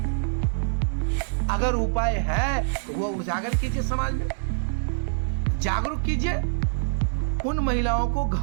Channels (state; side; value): silent; left; digital silence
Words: अगर उपाय है तो वो उजागर कीजिए, समाज में जागरूक कीजिए। उन महिलाओं को